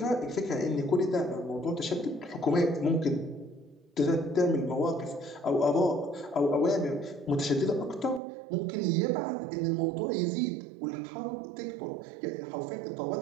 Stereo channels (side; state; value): left; drops out; at 8.2 s